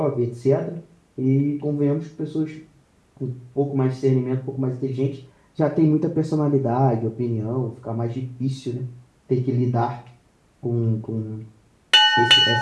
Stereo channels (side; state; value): both; identical; correlation 1.00